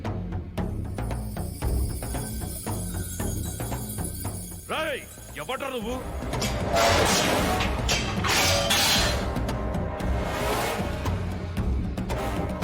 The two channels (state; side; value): identical; both; correlation 1.00